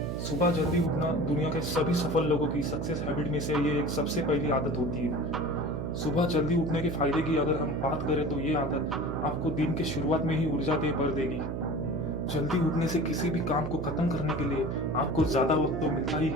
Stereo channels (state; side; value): noise; right; hum, 3 dB below the sound